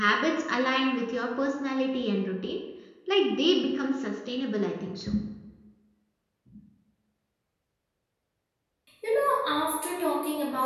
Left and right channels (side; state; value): both; identical; correlation 1.00